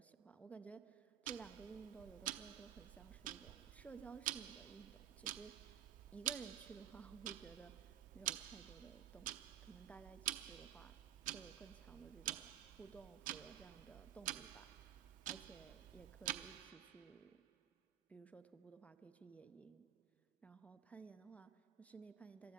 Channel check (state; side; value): quieter; left; 10.7 dB